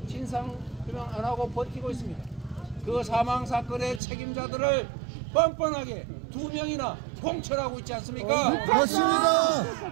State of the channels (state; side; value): drops out; left; at 4.0 s